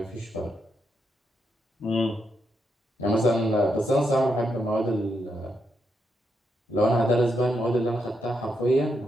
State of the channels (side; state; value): both; normal; correlation 0.82